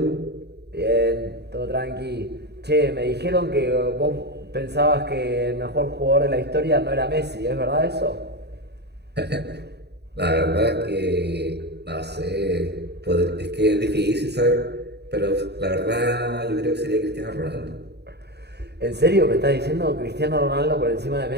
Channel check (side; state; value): left; late; 0.48 ms